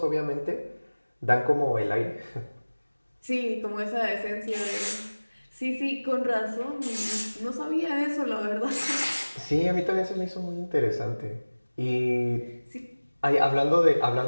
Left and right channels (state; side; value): inverted; both; correlation -1.00